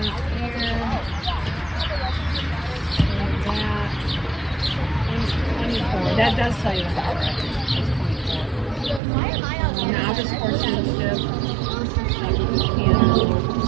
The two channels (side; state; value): left; drops out; at 9.0 s